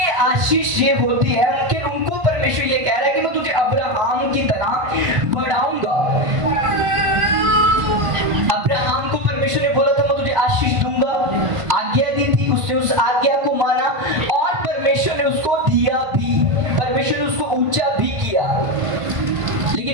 आशीष ये होती है, उनको परमेश्वर ये कह रहा है कि मैं तुझे अब्राहम की तरह बढ़ाऊंगा। अब्राहम को परमेश्वर ने बोला था मैं तुझे आशीष दूंगा, आज्ञा दी थी, उसने उस आज्ञा को माना, और परमेश्वर ने उसको दिया भी, परमेश्वर ने उसको ऊंचा भी किया। लेकिन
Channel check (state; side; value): late; left; 1.5 ms